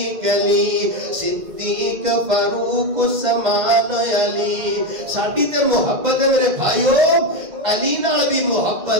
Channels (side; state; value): left; late; 2.0 ms